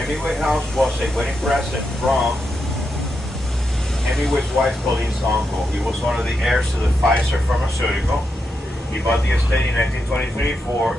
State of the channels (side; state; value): both; normal; correlation 0.85